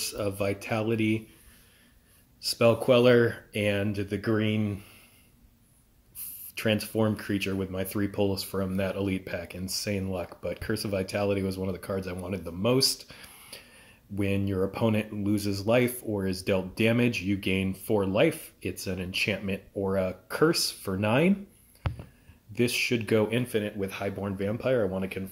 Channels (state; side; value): identical; both; correlation 1.00